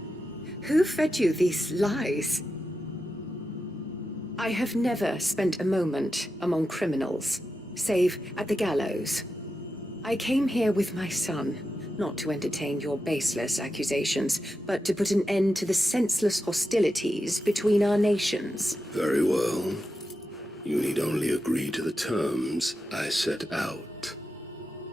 Who fed you these lies? I have never spent a moment among criminals, save at the gallows. I came here with my son, not to entertain your baseless accusations, but to put an end to the senseless hostilities between our nations. Very well. You need only agree to the terms I set out.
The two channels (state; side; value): normal; both; correlation 0.89